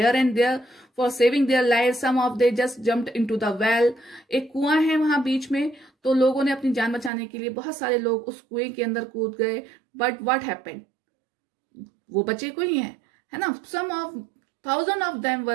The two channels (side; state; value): left; drops out; at 7.1 s